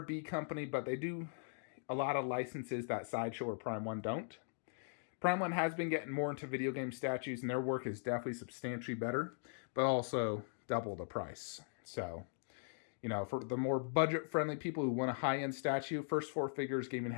B company, but they do a lot of licenses that Sideshow or Prime One don't. Prime One has been getting more into video game statues, and their work is definitely substantially better, but also double the price. So, for the more budget-friendly people who want a high-end statue, First4Figures Gaming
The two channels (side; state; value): right; silent; digital silence